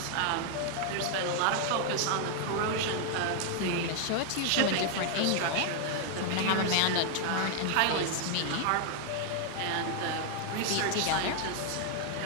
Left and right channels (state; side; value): different; both; correlation 0.00